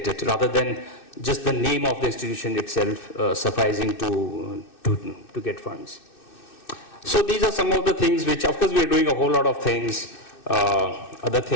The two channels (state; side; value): late; right; 2.6 ms